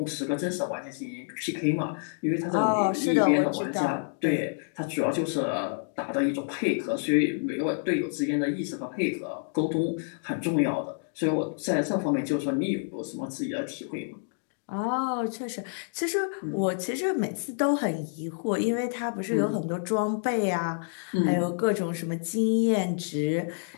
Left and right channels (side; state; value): right; silent; digital silence